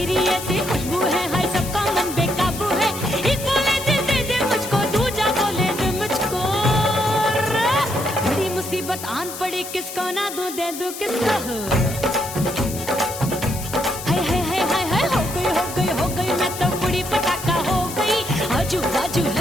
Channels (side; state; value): left; noise; hiss, 10 dB below the sound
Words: ऐसी खुशबू है हाय सबका मन बेकाबू है। एक बोले दे दे मुझको, दूजा बोले दे मुझको, बड़ी मुसीबत आन पड़ी किसको ना दूं दे दूं किसको। हाय हो गई मैं तो कुड़ी पटाखा हो गई, आजू बाजू